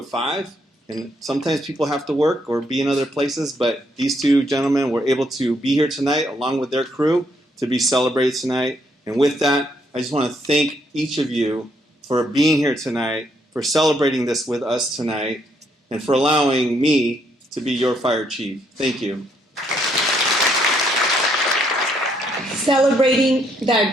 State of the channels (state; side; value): normal; both; correlation 0.72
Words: 5. And sometimes people have to work or be in other places, but these 2 gentlemen were able to be here tonight along with their crew to be celebrated tonight. And with that, I just want to thank each of you for being here tonight, for celebrating this with us tonight, and for allowing me to be your fire chief. Thank you. Celebrating